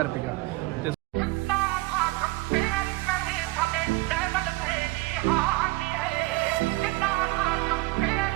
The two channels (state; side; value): quieter; left; 21.6 dB